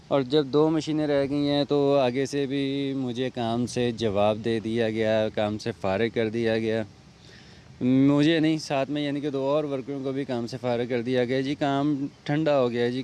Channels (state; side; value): identical; both; correlation 1.00